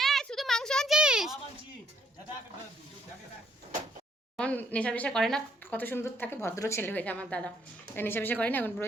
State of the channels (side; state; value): both; normal; correlation 0.68